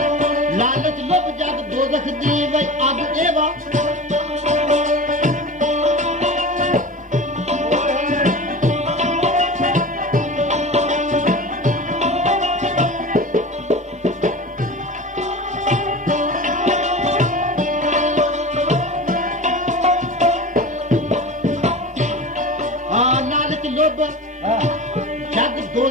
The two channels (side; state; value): both; normal; correlation 0.32